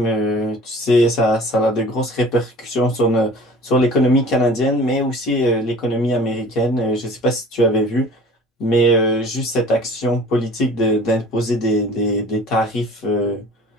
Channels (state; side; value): normal; both; correlation 0.45